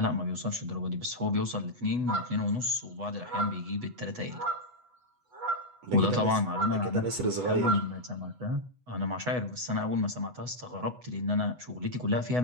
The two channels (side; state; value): left; late; 8.1 ms